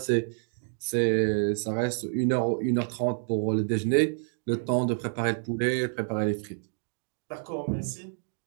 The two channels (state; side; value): silent; left; digital silence